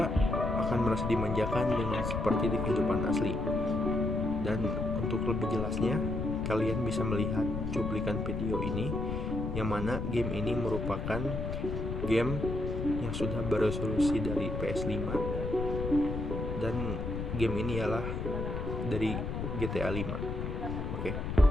akan merasa dimanjakan dengan seperti di kehidupan asli. Dan untuk lebih jelasnya, kalian bisa melihat cuplikan video ini, yang mana game ini merupakan game yang sudah beresolusi dari PS5, dan game ini ialah dari GTA 5. Oke,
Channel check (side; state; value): left; noise; rumble, 4 dB below the sound